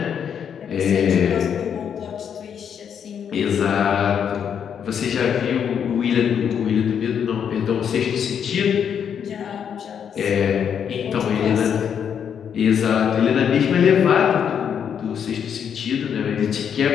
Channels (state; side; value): quieter; right; 8.0 dB